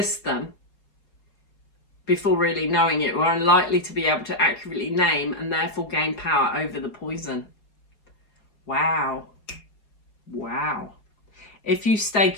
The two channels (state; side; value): late; right; 4.8 ms